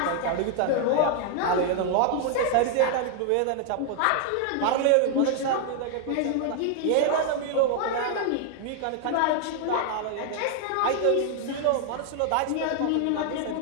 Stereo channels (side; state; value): both; different; correlation 0.00